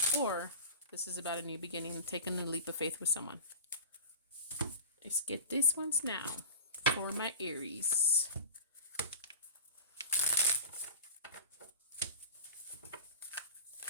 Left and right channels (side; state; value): both; inverted; correlation -0.33